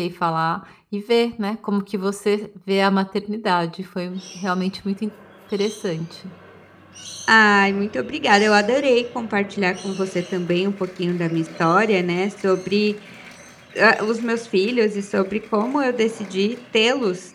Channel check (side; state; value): both; identical; correlation 1.00